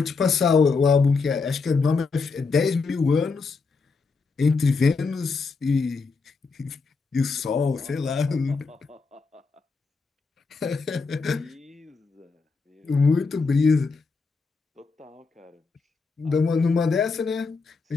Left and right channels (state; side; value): quieter; right; 4.5 dB